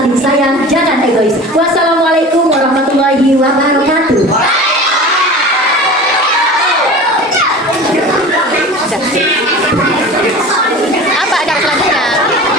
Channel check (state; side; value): normal; both; correlation 0.36